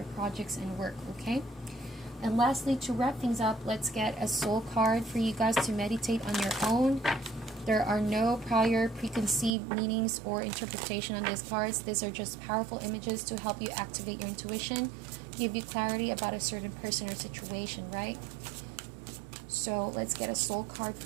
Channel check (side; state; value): left; drops out; at 9.5 s